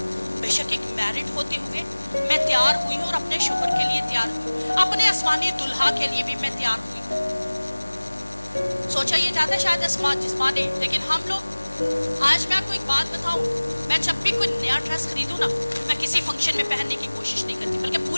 बेशक एक मैरिड होते हुए मैं तैयार हुई हूँ, और अपने शोहर के लिए तैयार हुई, अपने आसमानी दुल्हा के लिए भी मैं तैयार हुई। सोचा ये जाता है शायद जिस्मानी, लेकिन हम लोग, आज मैं आपको एक बात बताऊं, मैं जब भी कोई नया ड्रेस खरीदूं ना, मैं किसी फंक्शन में पहनने की कोशिश नहीं करती, बल्कि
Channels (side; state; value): both; inverted; correlation -1.00